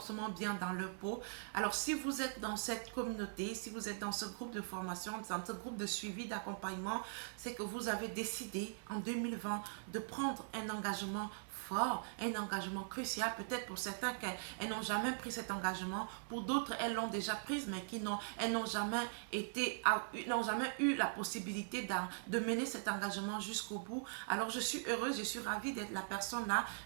bien dans leur peau. Alors si vous êtes dans cette communauté, si vous êtes dans ce groupe de formation, dans ce groupe de suivi, d'accompagnement, c'est que vous avez décidé en 2020 de prendre un engagement fort, un engagement crucial. Peut-être pour certains qu'elles n'ont jamais pris cet engagement, pour d'autres elles l'ont déjà prise, mais elles n'ont jamais n'ont jamais eu la possibilité de mener cet engagement jusqu'au bout. Alors je suis heureuse, je suis ravie d'être la personne là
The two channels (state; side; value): silent; left; 50 dB below the other